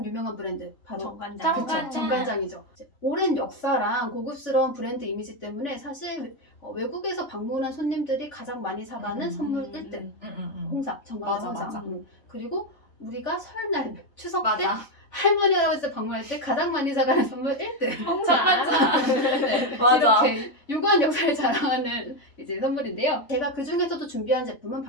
유명한 브랜드 바로 정관장. 그쵸, 정관장이죠. 오랜 역사랑 고급스러운 브랜드 이미지 때문에 사실 외국에서 방문한 손님들이 가장 많이 사가는 선물 1등. 홍삼, 정관장 맞아, 홍삼. 맞아. 그리고 우리가 설날, 추석 때 맞아. 할머니 할아버지 방문할 때 가장 많이 사가는 선물 1등. 정관장. 네, 맞아. 이렇게 유구한 역사를 자랑하는 이제 선물인데요. 제가 그 중에서도 준비한 제품은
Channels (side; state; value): right; late; 3.5 ms